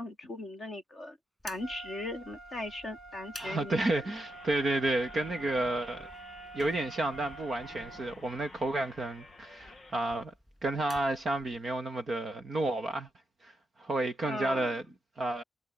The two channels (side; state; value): both; normal; correlation 0.84